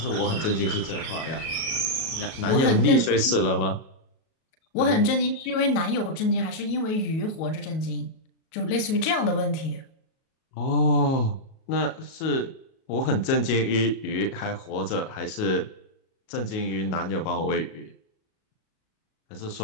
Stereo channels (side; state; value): right; late; 37 ms